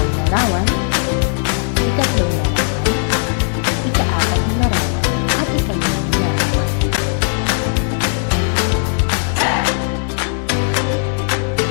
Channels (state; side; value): silent; right; digital silence